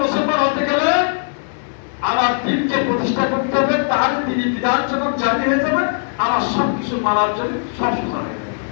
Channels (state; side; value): silent; right; digital silence